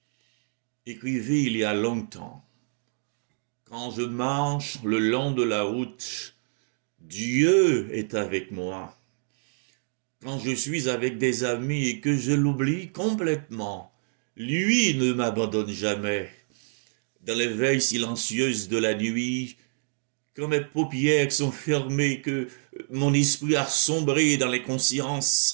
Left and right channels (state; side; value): silent; left; digital silence